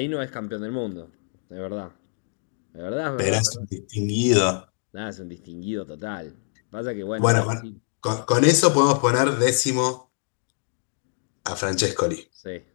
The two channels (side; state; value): right; silent; digital silence